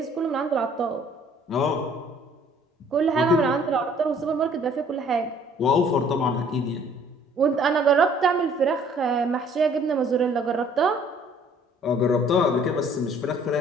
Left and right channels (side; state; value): both; normal; correlation 0.57